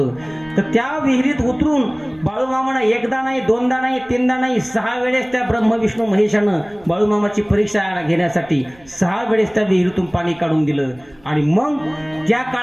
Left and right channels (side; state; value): right; noise; rumble, 27 dB below the sound